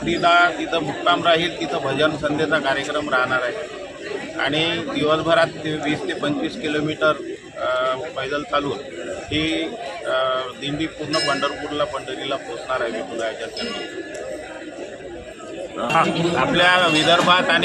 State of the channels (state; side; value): identical; both; correlation 1.00